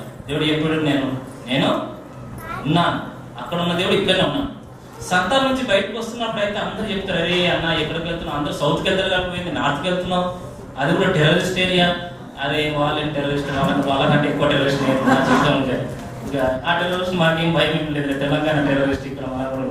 దేవుడు ఎప్పుడు నేను ఉన్నాను, అక్కడ ఉన్న దేవుడు ఇక్కడనే ఉన్నాను. సంతాల నుంచి బయటకు వస్తున్నప్పుడు అయితే అందరూ చెప్తారు, అరే అన్న ఎక్కడికి వెళ్తున్నావు, అందరూ సౌత్కి వెళ్తారు కాకపోయింది, నార్త్కి వెళ్తున్నావు, అది కూడా టెర్రరిస్ట్ ఏరియా. అరే వాళ్ళని టెర్రరిస్ట్ వాళ్ళకంటే ఎక్కువ టెర్రరిస్ట్ చెప్తా ఉంటారు. ఇక ఆ టెర్రరిస్ట్ మాకేం భయం ఏం లేదు, తెలంగాణ టెర్రరిస్ట్ ఇక్కడ మన కూడా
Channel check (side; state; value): both; identical; correlation 1.00